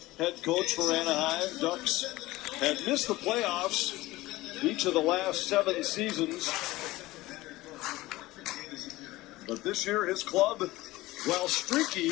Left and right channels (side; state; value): right; quieter; 18.6 dB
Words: The head coach for Anaheim Ducks had missed the playoffs each of the last 7 seasons. But this year, his club, while streaky,